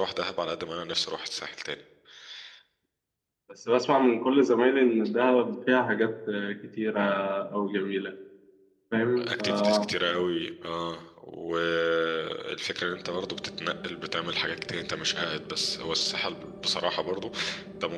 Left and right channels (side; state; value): both; identical; correlation 1.00